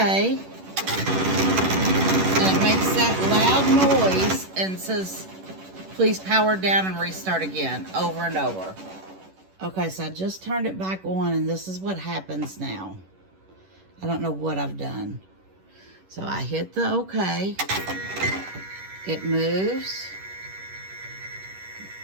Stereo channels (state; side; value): late; left; 11 ms